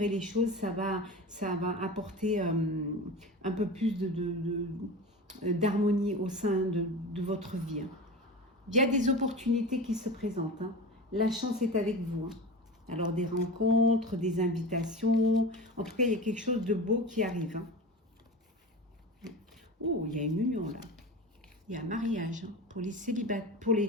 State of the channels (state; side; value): normal; both; correlation 0.30